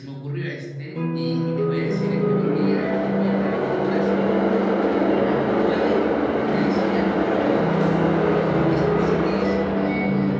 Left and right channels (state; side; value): identical; both; correlation 1.00